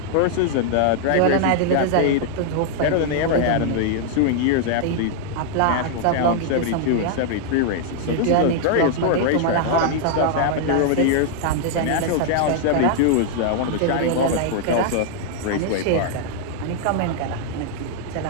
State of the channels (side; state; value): both; different; correlation 0.00